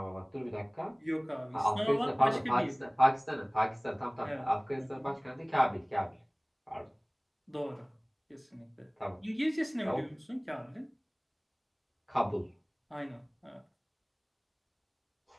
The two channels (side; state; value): both; identical; correlation 1.00